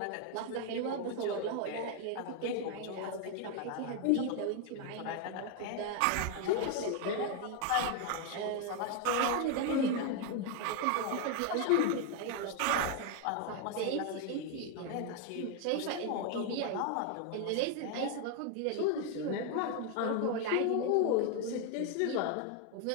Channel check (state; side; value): different; both; correlation 0.01